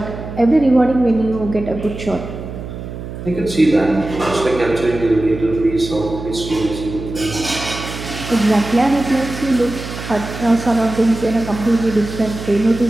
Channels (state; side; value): noise; right; hum, 9 dB below the sound